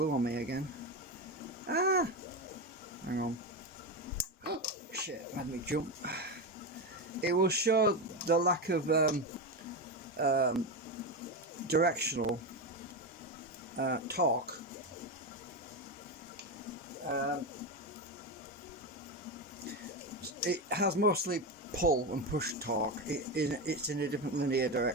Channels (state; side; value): normal; both; correlation 0.15